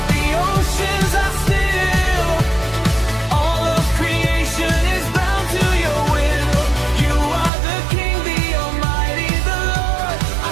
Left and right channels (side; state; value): left; drops out; at 7.5 s